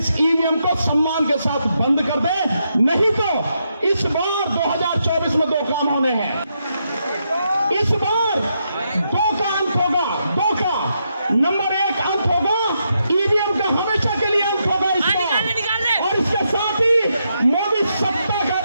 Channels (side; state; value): both; inverted; correlation -0.81